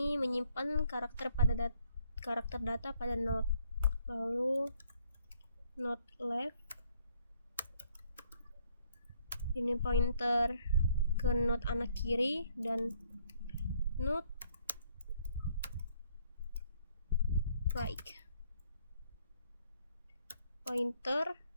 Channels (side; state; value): both; inverted; correlation -0.67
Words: menyimpan karakter data pada node. Lalu node left ini pointer ke node anak kiri, dan node right pointer